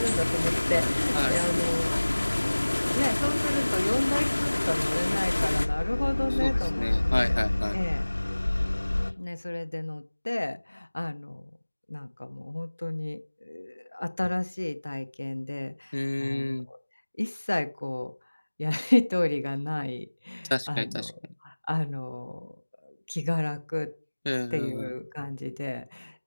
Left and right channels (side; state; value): both; inverted; correlation -1.00